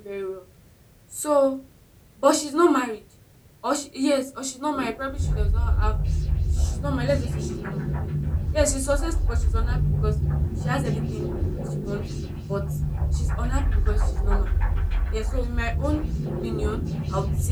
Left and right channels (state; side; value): identical; both; correlation 1.00